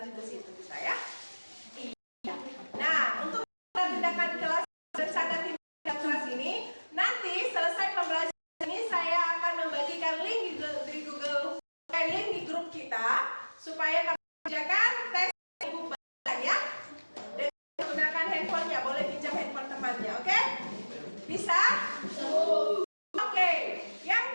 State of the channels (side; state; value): both; inverted; correlation -1.00